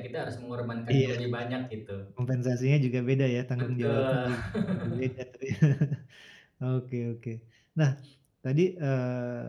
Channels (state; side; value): identical; both; correlation 1.00